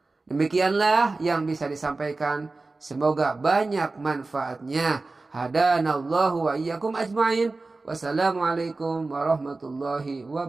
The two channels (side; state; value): left; quieter; 3.5 dB